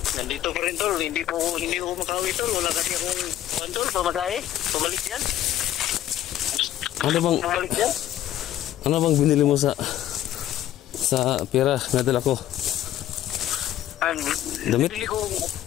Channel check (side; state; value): right; quieter; 12.4 dB